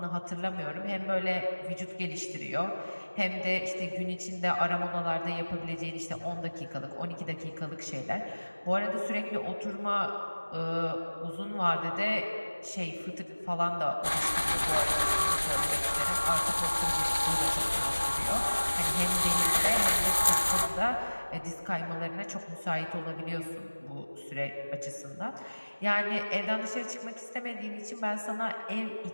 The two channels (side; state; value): both; inverted; correlation -1.00